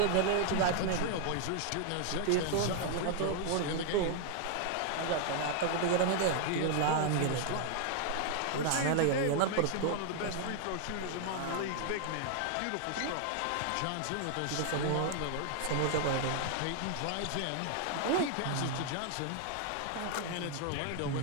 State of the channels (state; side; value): different; both; correlation 0.00